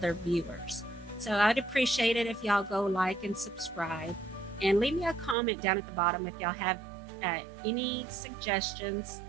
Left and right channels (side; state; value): left; drops out; at 5.4 s